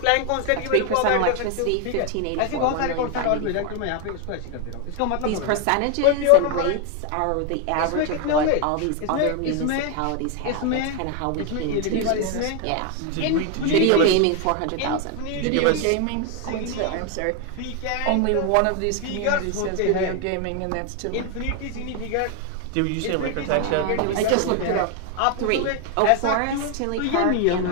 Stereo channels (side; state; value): both; different; correlation 0.01